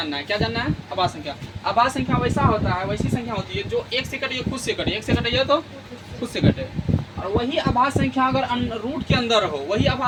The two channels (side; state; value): both; identical; correlation 1.00